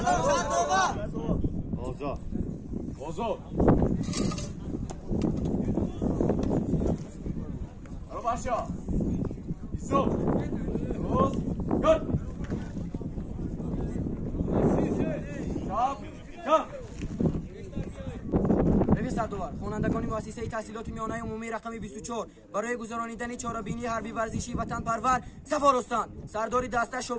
سردوار. اوضاع اوضاع برو باشا ایسو روز گل شاب رفیق سردوار، خوانندگان خوانندگان مؤسسه تحصیلات میانه عمومی رقم 24 برای گذرانیدن چهاربینی حربی ورزشی وطن پرور صف آرستان. سردار دسته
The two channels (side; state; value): both; identical; correlation 1.00